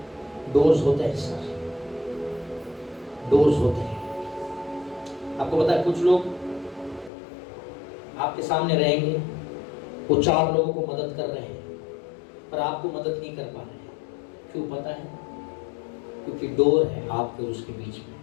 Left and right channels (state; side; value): drops out; right; at 7.1 s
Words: डोर्स होते हैं सर, डोर्स होते हैं। आपको पता है कुछ लोग आपके सामने रहेंगे, वो 4 लोगों को मदद कर रहे हैं, पर आपको मदद नहीं कर पा रहे हैं। क्यों पता है? क्योंकि डोर है आपके और उसके बीच में।